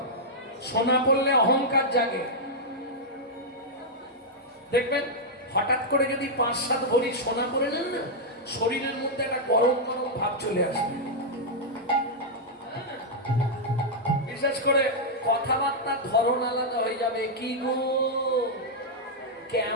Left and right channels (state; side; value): normal; both; correlation -0.05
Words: সোনা পড়লে অহংকার জাগে, দেখবেন হঠাৎ করে যদি 5-7 ভরি সোনা পরে নেন না, শরীরের মধ্যে একটা গরম গরম ভাব চলে আসবে। বিশেষ করে কথাবার্তার ধরন আলাদা হয়ে যাবে। কি গো,